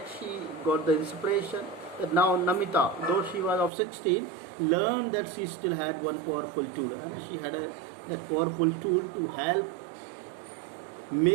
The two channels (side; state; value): left; drops out; at 3.7 s